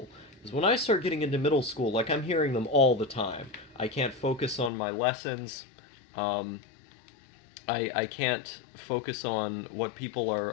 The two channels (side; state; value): right; drops out; at 4.7 s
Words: Because when I start getting into middle school, like, I'm hearing them all the time. I can't focus on my lessons. Um, I can't focus on what people